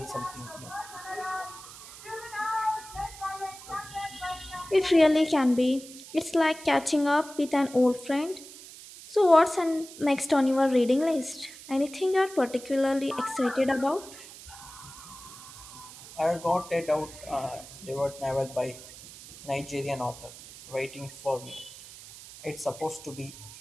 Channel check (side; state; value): right; noise; hiss, 16 dB below the sound